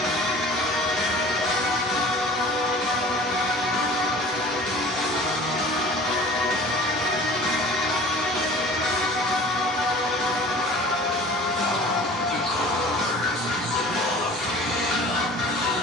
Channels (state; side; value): normal; both; correlation 0.44